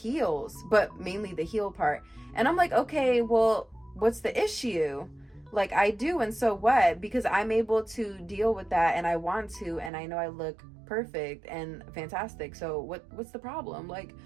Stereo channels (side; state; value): left; drops out; at 9.9 s